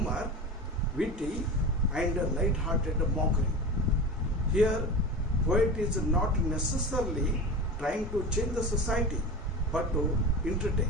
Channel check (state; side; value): normal; both; correlation 0.29